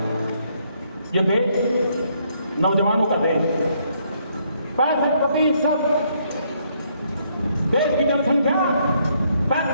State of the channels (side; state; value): both; inverted; correlation -0.71